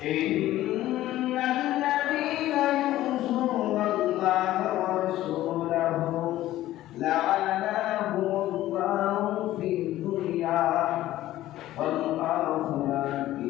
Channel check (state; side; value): quieter; right; 14.7 dB